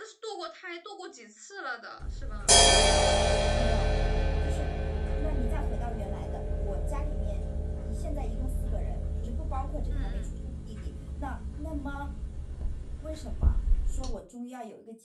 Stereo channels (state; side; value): identical; both; correlation 1.00